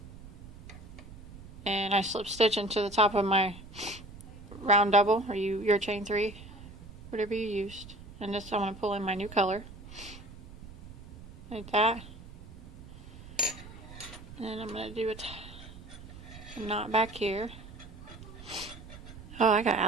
and I slip stitch into the top of my round double, or your chain 3, whatever you used. And this, I'm going to pull in my new color like that, and then I'm going to do a knot back here. Oh, I got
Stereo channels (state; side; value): noise; right; rumble, 16 dB below the sound